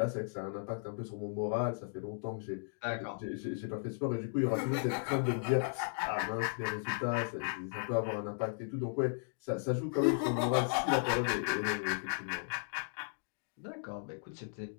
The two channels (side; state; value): right; silent; digital silence